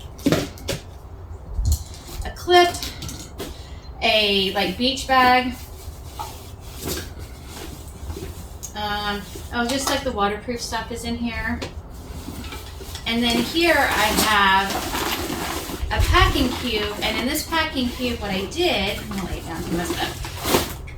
A clip, a like beach bag. Oh, just like the waterproof stuff is in here. And then here I have a packing cube, and in this packing cube, what I did, I'm gonna lay it down to mess it up.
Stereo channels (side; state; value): both; identical; correlation 1.00